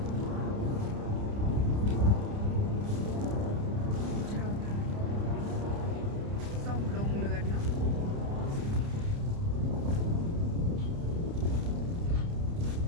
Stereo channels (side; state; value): left; late; 29 ms